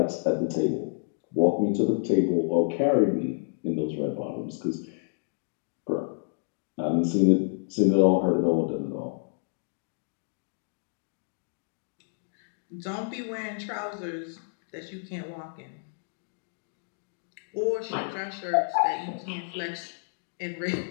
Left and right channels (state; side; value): silent; right; digital silence